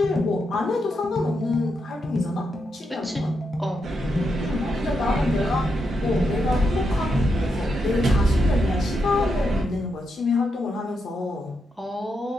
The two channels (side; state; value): both; normal; correlation 0.83